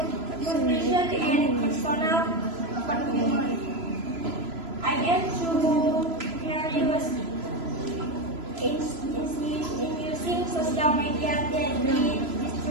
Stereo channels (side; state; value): left; late; 3.0 ms